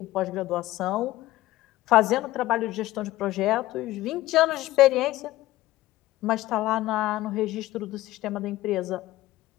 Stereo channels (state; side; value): quieter; right; 16.5 dB